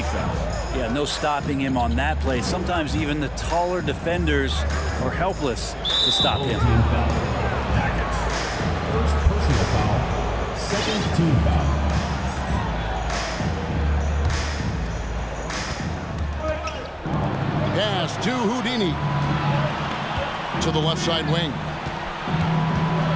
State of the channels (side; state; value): both; identical; correlation 1.00